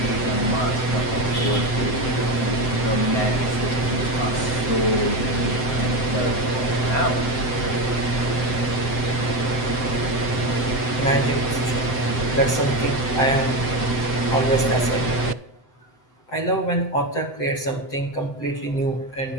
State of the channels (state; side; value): late; right; 7.8 ms